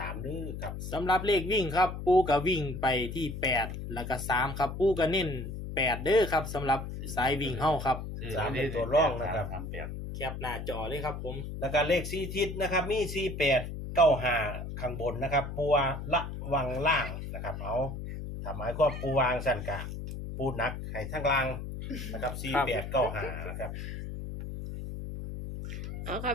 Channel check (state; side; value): noise; left; hum, 7 dB below the sound